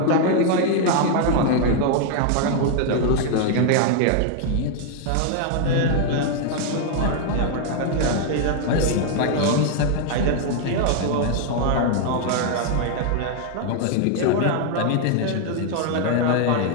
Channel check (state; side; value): different; both; correlation 0.00